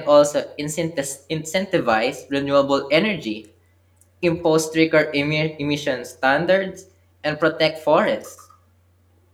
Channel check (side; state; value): both; identical; correlation 1.00